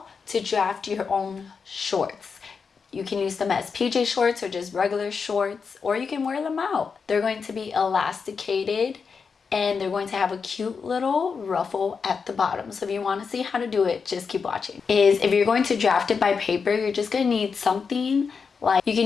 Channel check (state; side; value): quieter; right; 5.6 dB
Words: to draft your own shorts. You can use them as PJ shorts or just regular shorts, or you can wear them out. They're going to be elasticated and they're going to have a cute little ruffle at the bottom. So if you want to see how to do it, just keep watching. If you're going to draft it by paper, you're just going to need something like, you